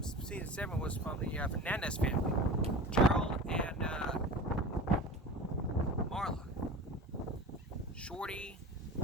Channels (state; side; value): normal; both; correlation 0.35